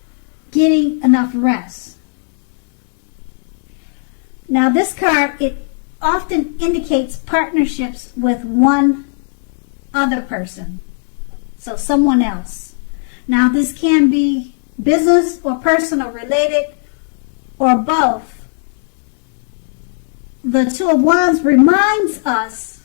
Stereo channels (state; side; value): silent; right; 68 dB below the other